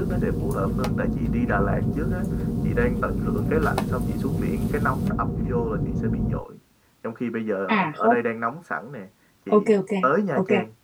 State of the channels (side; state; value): both; identical; correlation 1.00